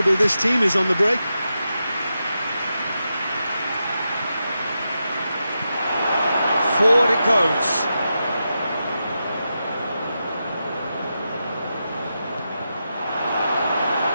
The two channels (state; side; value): inverted; both; correlation -0.88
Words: this team is on the break. Forward it goes.